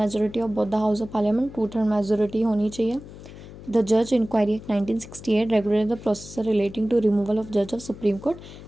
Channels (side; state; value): left; noise; hum, 16 dB below the sound